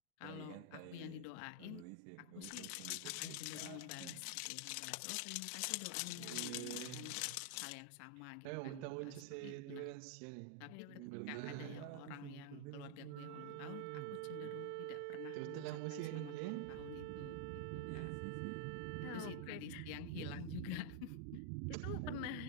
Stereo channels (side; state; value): both; different; correlation 0.00